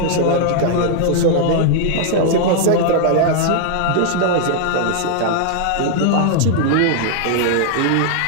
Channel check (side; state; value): both; different; correlation -0.01